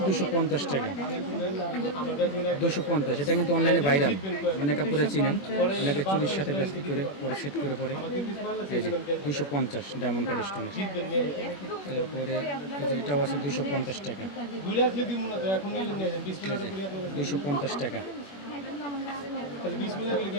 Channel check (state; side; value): late; right; 21 ms